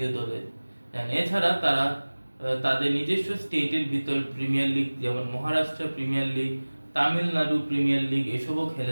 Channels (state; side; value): inverted; both; correlation -1.00